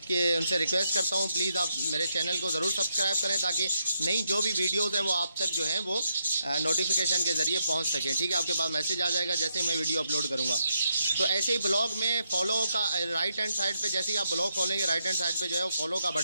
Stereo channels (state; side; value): inverted; both; correlation -0.80